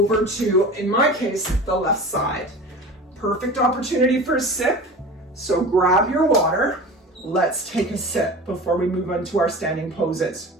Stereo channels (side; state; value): both; normal; correlation 0.35